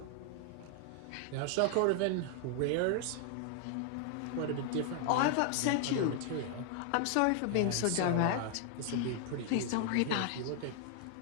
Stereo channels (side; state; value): both; different; correlation 0.00